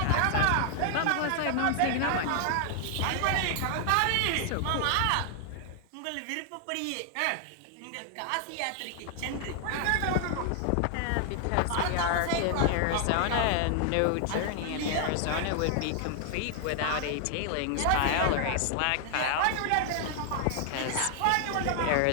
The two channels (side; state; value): both; different; correlation 0.00